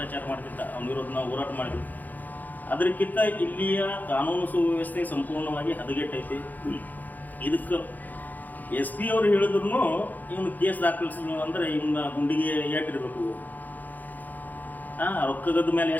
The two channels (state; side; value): late; right; 0.083 ms